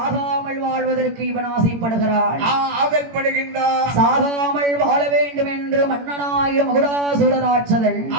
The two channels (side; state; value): left; late; 18 ms